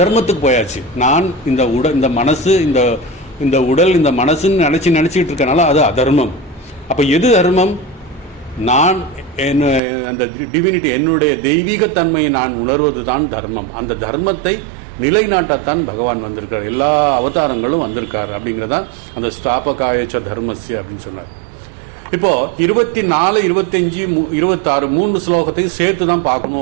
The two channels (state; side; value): drops out; left; at 9.8 s